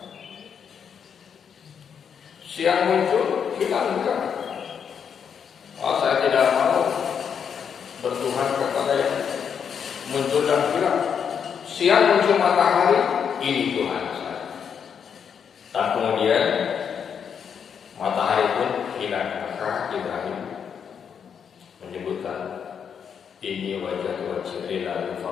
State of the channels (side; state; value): right; quieter; 7.3 dB